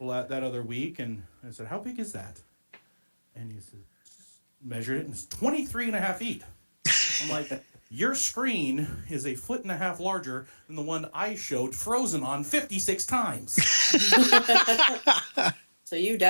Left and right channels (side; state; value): both; inverted; correlation -1.00